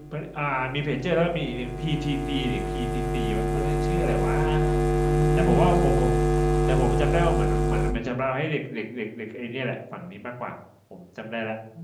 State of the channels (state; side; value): identical; both; correlation 1.00